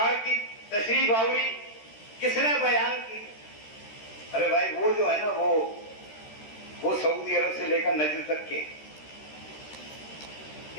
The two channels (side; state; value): right; late; 13 ms